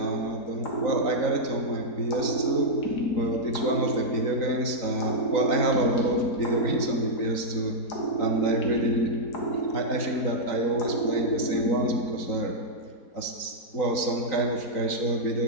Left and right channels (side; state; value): right; late; 3.9 ms